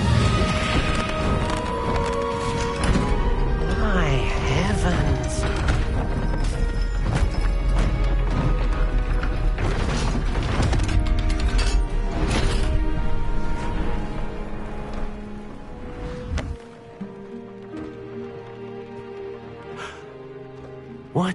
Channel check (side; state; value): both; identical; correlation 1.00